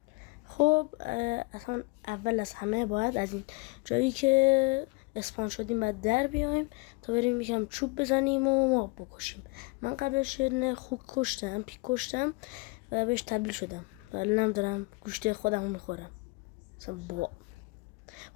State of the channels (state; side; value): quieter; right; 27.0 dB